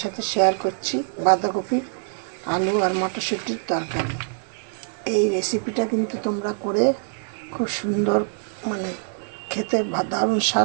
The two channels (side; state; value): left; silent; 63 dB below the other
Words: সাথে শেয়ার করছি বাঁধাকপি, আলু আর মটরশুঁটির তরকারি। এই রেসিপিটা কিন্তু তোমরা করে খুব সুন্দর, মানে খেতে দারুণ